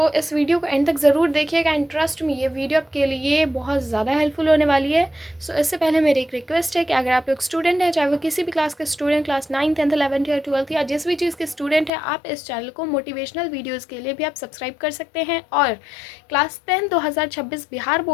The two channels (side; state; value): right; drops out; at 11.9 s